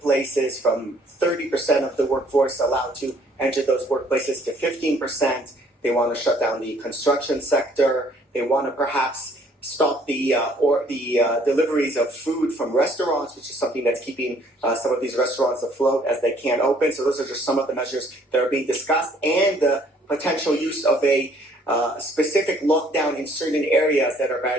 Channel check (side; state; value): both; normal; correlation 0.61